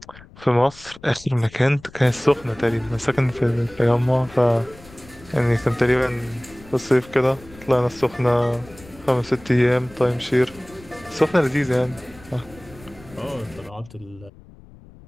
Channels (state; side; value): noise; left; rumble, 22 dB below the sound